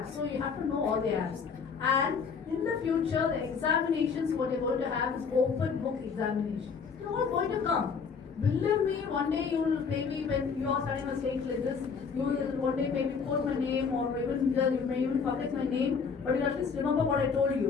So you have to know all the apps. And in the future, the examinations, what you're going to have is open book examination. They're all going to come. Believe me, one day you will maybe when you are studying a stage like this, you will one day maybe quote my name or even you may even publish my name, but you at least remember what I told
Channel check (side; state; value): right; quieter; 5.8 dB